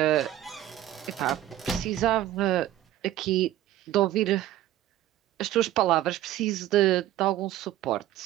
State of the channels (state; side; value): quieter; left; 13.5 dB